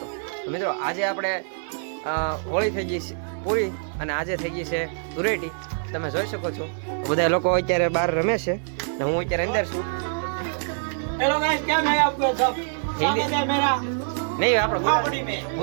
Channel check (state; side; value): silent; left; 57 dB below the other